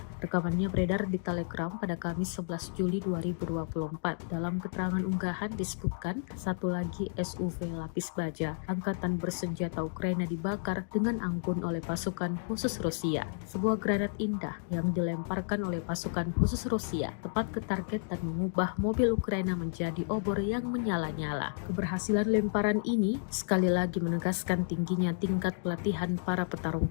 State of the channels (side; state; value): right; silent; digital silence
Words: Rekamannya beredar di Telegram pada Kamis 11 Juli 2024. Dalam keterangan unggahan disebutkan satu lagi SUV lapis baja Angkatan bersenjata Ukraina dibakar dengan anggun oleh pasukan khusus Rusia. Sebuah granat indah yang dilemparkan oleh pasukan khusus Rusia tepat ke target dan mengubah mobil Ukraina menjadi obor yang menyala-nyala. Keberhasilan lemparan ini sekali lagi menegaskan tingginya tingkat pelatihan para